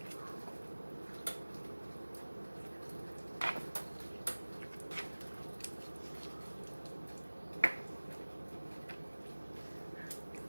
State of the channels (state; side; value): inverted; both; correlation -1.00